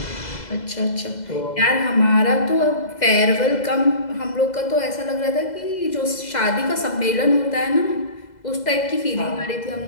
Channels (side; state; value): right; late; 2.0 ms